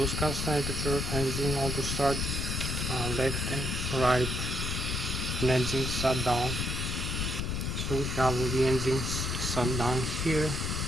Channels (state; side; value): noise; left; rumble, 2 dB below the sound